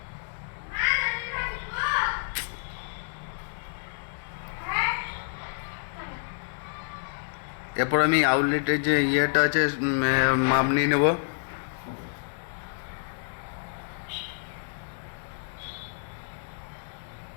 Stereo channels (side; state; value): right; silent; 59 dB below the other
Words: এরপর আমি আউটলেটের যে ইয়েটা আছে মাপ নিয়ে নেব।